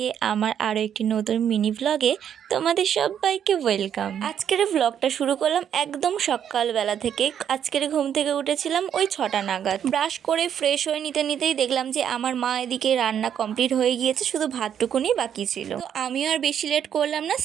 আমার আরও একটি নতুন মিনি ভ্লগে তোমাদের সবাইকে ওয়েলকাম। আজকের ভ্লগটা শুরু করলাম একদম সকালবেলা থেকে। আজকের ঘুম থেকে উঠেছিলাম ওই 6টা নাগাদ। ব্রাশ করে ফ্রেশ হয়ে নিতেই দেখলাম যে আমার মা এদিকে রান্না কমপ্লিট হয়ে গিয়েছে, শুধু ভাতটুকুনি বাকি ছিল। তো আমিও আর বেশি লেট করলাম না,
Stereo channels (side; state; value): left; quieter; 9.0 dB